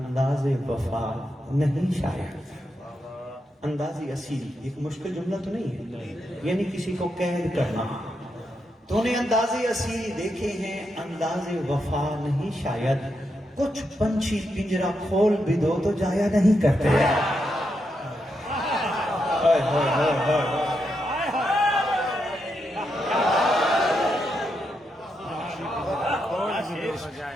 وفا نہیں شاید۔ اندازی اسیری ایک مشکل جملہ تو نہیں ہے، یعنی کسی کو قید کرنا۔ تو نے اندازی اسیری دیکھے ہیں، انداز وفا نہیں شاید، کچھ پنچھی پنجرا کھول بھی دو تو جایا نہیں کرتے۔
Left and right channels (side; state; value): both; normal; correlation 0.83